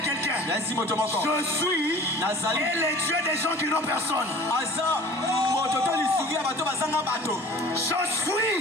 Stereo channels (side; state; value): both; normal; correlation 0.45